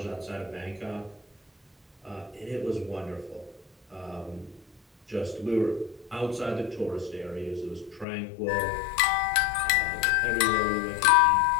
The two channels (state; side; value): drops out; right; at 8.1 s